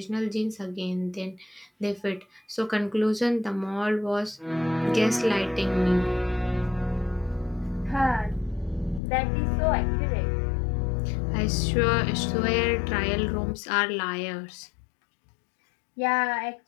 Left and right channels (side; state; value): right; drops out; at 9.0 s